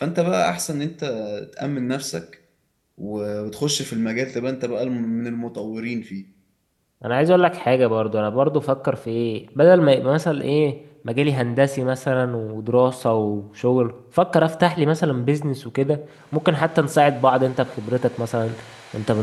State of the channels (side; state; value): both; identical; correlation 1.00